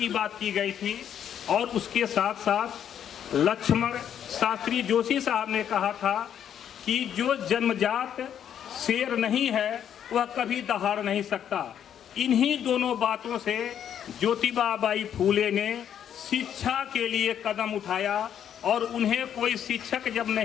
बात की गई थी, और उसके साथ साथ लक्ष्मण शास्त्री जोशी साहब ने कहा था कि जो जन्मजात शेर नहीं है वह कभी दहाड़ नहीं सकता। इन्हीं दोनों बातों से ज्योतिबा बाई फूले ने शिक्षा के लिए कदम उठाया और उन्हें कोई शिक्षक जब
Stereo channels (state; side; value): quieter; right; 9.3 dB